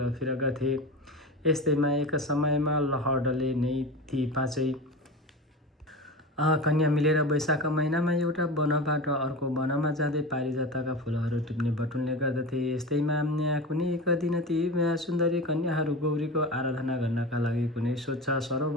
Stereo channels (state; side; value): normal; both; correlation 0.28